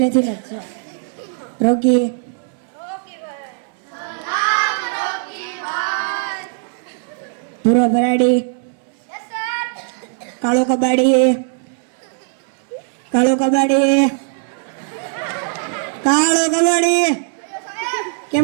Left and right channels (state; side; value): silent; left; digital silence